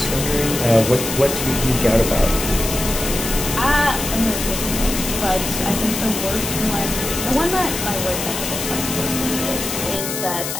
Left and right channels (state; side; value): noise; left; hiss, 4 dB below the sound